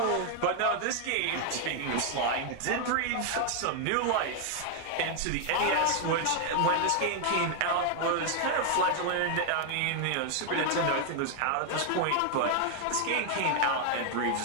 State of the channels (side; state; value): both; different; correlation 0.00